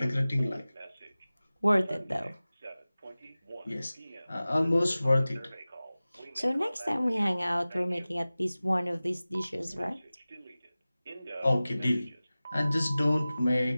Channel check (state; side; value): inverted; both; correlation -0.97